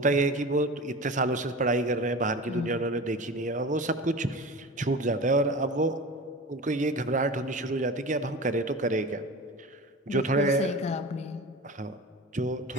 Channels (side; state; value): both; normal; correlation 0.32